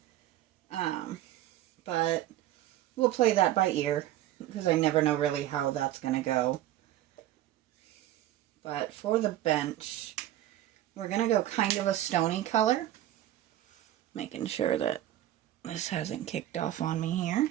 But we'll play that by ear, because I never know really how that's going to go. But for the bench, we're going to go kind of a stony color. Making sure that this hasn't kicked off on me here.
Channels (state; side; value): quieter; left; 13.6 dB